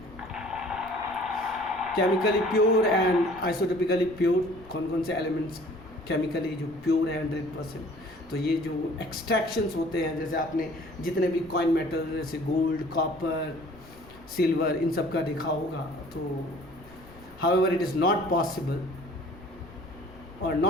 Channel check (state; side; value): noise; left; rumble, 21 dB below the sound